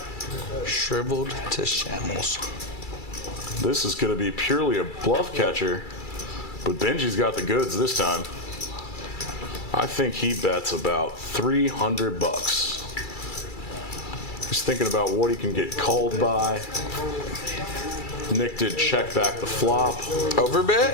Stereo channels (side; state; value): right; late; 2.3 ms